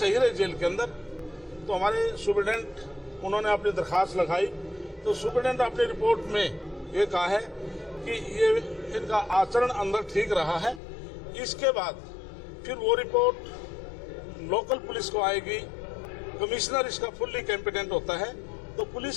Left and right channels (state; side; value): drops out; right; at 10.8 s